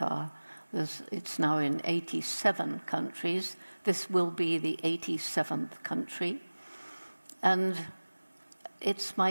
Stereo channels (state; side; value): inverted; both; correlation -1.00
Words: It's now in 87 countries. This will be the 87th country. And it's